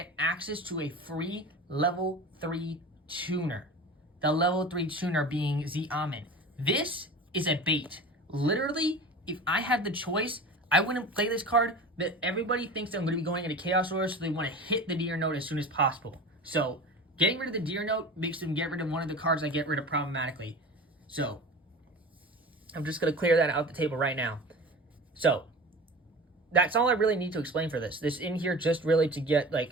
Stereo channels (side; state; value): both; normal; correlation 0.35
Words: access to a free level 3 tuner. The level 3 tuner being Xiamen. This is a bait. Literally, if I had the choice, I wouldn't play this card, but everybody thinks that I'm going to be going into Chaos Roller, so they want to hit the Deer Note as soon as possible. So, getting rid of the Deer Note makes them get rid of one of the cards I get rid of problematically. So, I'm just going to clear that out the table right now. So, that's all I really need to explain for this. This in here just really to get,